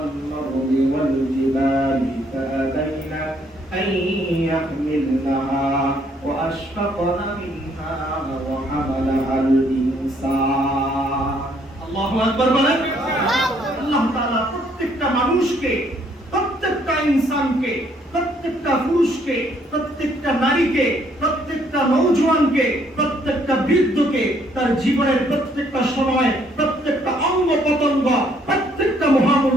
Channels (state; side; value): normal; both; correlation 0.67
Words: আরদি ওয়াল জিবালি ফাআবাইনা أن يحملنها وأشفقن منها وحملها الإنسان الله أكبر বলেন। আল্লাহ তাআলা প্রত্যেকটা মানুষকে, প্রত্যেকটা ইনসানকে, প্রত্যেকটা পুরুষকে, প্রত্যেকটা নারীকে, প্রত্যেকটা নওজোয়ানকে, প্রত্যেকটা বৃদ্ধকে তার জীবনের প্রত্যেকটা সময়, প্রত্যেকটা অঙ্গ প্রত্যঙ্গ, প্রত্যেকটা